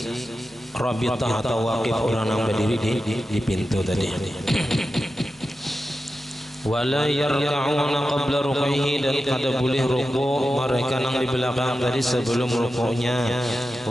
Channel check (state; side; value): normal; both; correlation 0.91